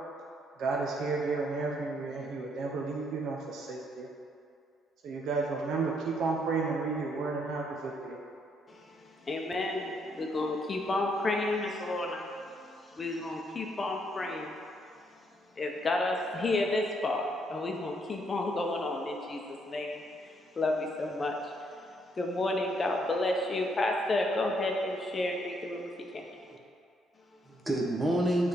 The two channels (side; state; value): both; normal; correlation 0.72